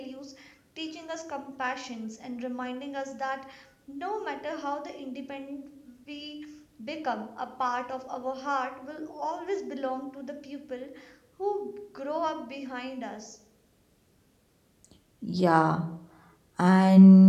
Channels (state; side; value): identical; both; correlation 1.00